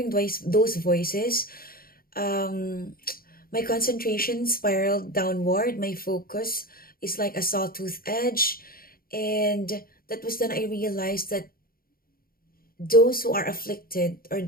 those voices, um, my concentration spiraled downward. My focus is like a sawtooth edge. And that was then I realized that those who are afflicted, or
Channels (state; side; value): late; right; 0.43 ms